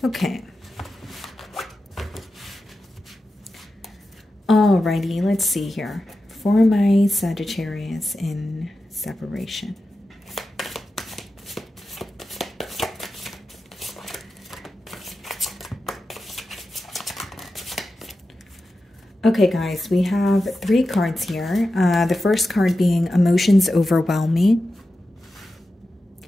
Okay. Alrighty, let's see here. For my Sagittarius in separation. Okay, guys, we have 3 cards here. The first card being emotions overwhelm me.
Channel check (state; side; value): normal; both; correlation 0.92